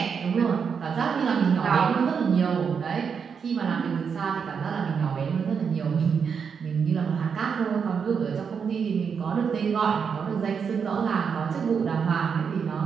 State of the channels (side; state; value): left; quieter; 6.4 dB